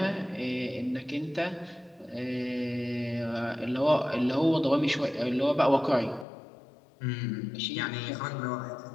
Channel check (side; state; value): right; drops out; at 6.2 s